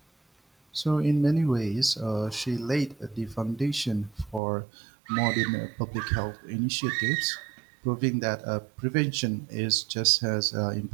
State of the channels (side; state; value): left; drops out; at 4.4 s